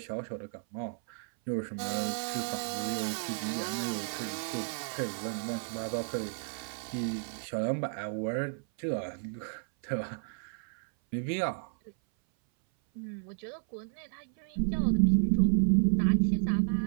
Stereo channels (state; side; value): silent; left; 56 dB below the other